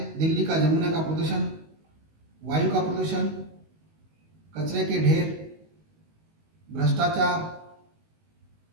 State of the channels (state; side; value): late; left; 19 ms